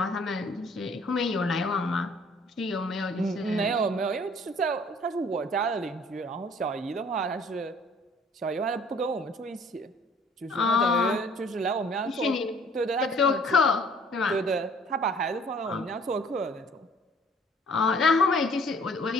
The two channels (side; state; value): both; normal; correlation 0.56